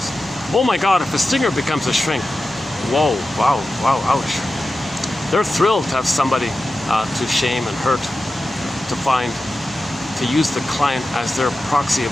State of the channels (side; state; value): both; normal; correlation 0.93